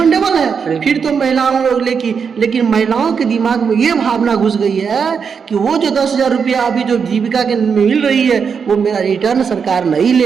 है, फिर तो महिलाओं लोग लेकिन महिलाओं के दिमाग में ये भावना घुस गई है कि वो जो 10,000 रुपया अभी जो जीविका के मिल रही है, वो मेरा रिटर्न सरकार नहीं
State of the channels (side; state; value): left; quieter; 6.3 dB